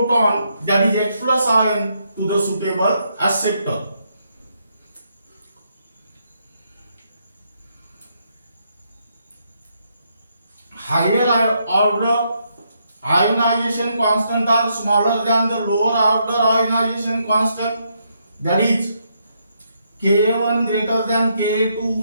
that is H plus ion, to the suitable acceptor. Higher order ionization constant are smaller than the lower order ionization constant, that is Ka1 greater than Ka2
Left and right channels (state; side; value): inverted; both; correlation -0.77